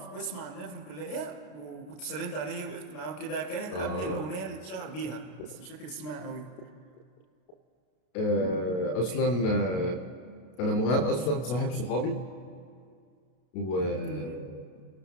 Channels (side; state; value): right; late; 33 ms